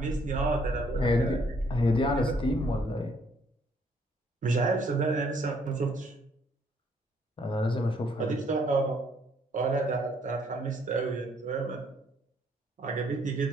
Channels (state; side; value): normal; both; correlation 0.66